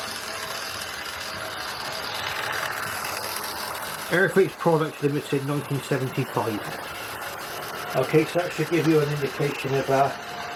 Airfix Products Limited 1975. Okay, so that should give you an indication of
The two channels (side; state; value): both; identical; correlation 1.00